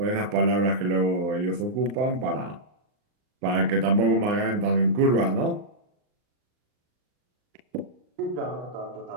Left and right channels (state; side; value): late; left; 39 ms